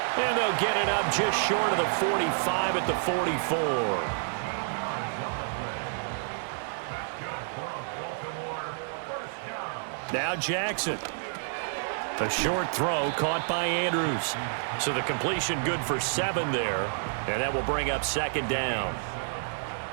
And they'll get it up just short of the 45 at the 44. Now Jackson. A short throw caught by Andrews. So the completion good for 7 there. And that will bring up second down.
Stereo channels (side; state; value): left; silent; digital silence